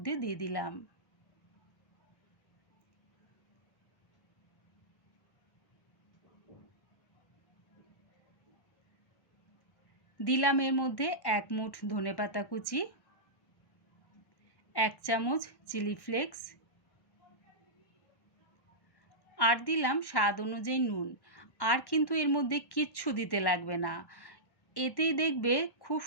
দিয়ে দিলাম। দিলাম এর মধ্যে 1 মুঠ ধনেপাতা কুচি, 1 চামচ চিলি ফ্লেক্স, আর দিলাম স্বাদ অনুযায়ী নুন। আর কিন্তু এর মধ্যে কিচ্ছু দিতে লাগবে না, এতেই দেখবে খুব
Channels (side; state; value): right; late; 1.1 ms